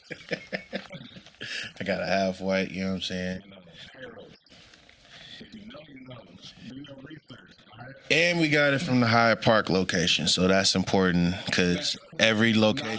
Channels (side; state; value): both; identical; correlation 1.00